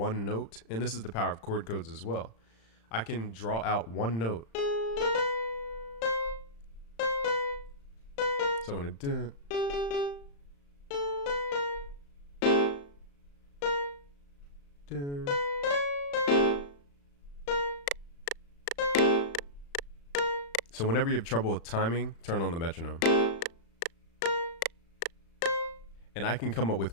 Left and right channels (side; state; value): right; late; 35 ms